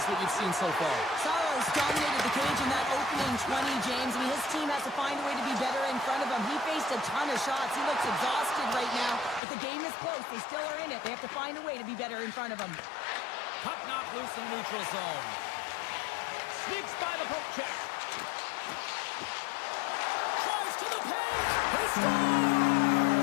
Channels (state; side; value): drops out; right; at 9.4 s